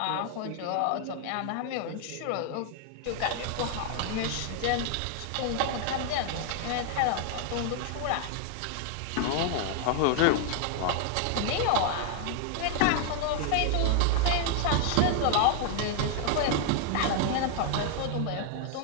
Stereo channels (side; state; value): both; different; correlation 0.00